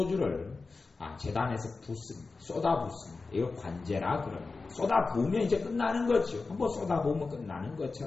제단에서 붓습니다. 쏟아붓습니다. 이거 관제라 그럽니다. 쏟아부으면 이제 끝나는 거죠. 한번 쏟아부으면 끝나는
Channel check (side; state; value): right; quieter; 4.0 dB